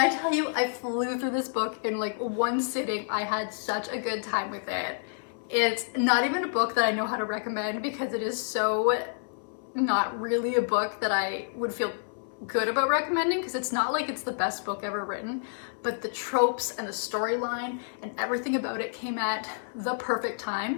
tell you I flew through this book in like one sitting, I had such a good time with it. It's not even a book that I know how to recommend, because it is so not really a book that I would feel good about recommending, because it's not like it's the best book ever written, but the tropes and the storyline and everything about it came at the perfect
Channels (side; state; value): right; silent; 59 dB below the other